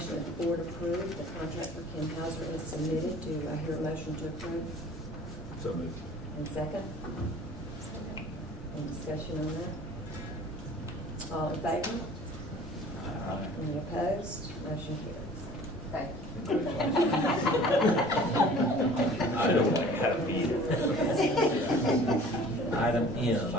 that the board approve the contract for Kim Hauser as submitted. Do I hear a motion to approve? So moved. And second? Second. Any discussion on that? All in favor? Aye. Any opposed? Motion carries. Thank I don't like having meetings. Item M,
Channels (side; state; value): both; normal; correlation 0.47